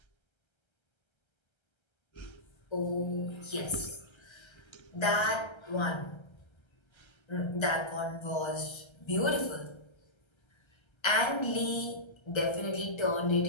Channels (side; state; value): right; late; 1.3 ms